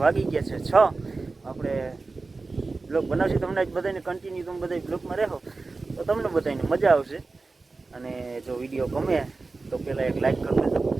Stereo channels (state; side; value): quieter; left; 3.8 dB